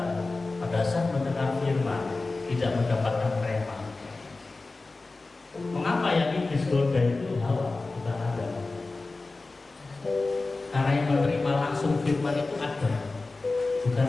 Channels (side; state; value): right; quieter; 3.5 dB